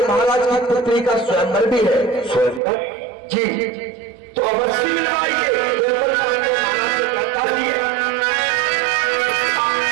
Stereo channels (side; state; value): left; drops out; at 2.6 s